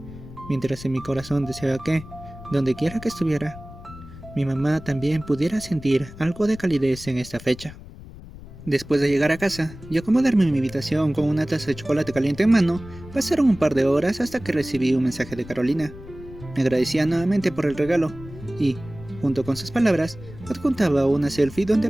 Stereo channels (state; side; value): noise; left; rumble, 16 dB below the sound